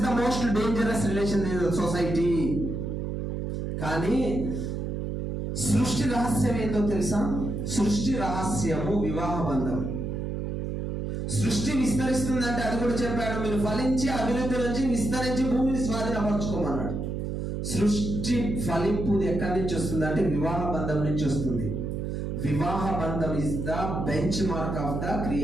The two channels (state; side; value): noise; right; hum, 3 dB below the sound